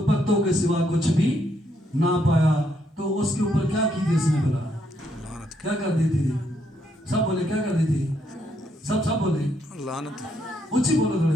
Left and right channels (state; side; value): normal; both; correlation 0.74